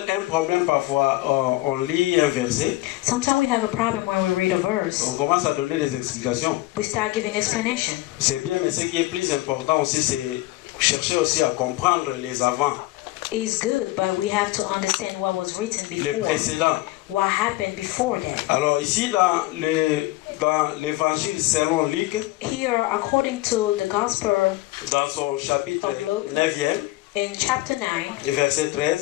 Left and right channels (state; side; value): quieter; right; 18.7 dB